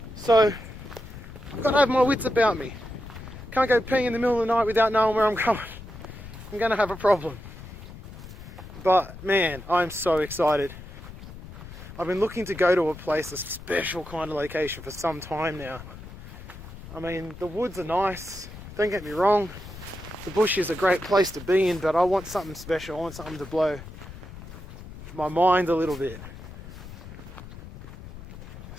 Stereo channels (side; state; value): left; noise; rumble, 14 dB below the sound